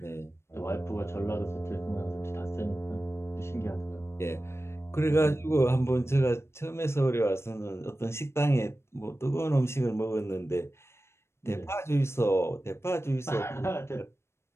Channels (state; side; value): late; right; 0.13 ms